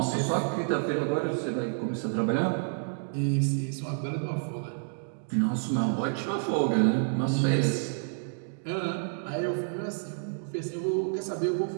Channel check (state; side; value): silent; left; digital silence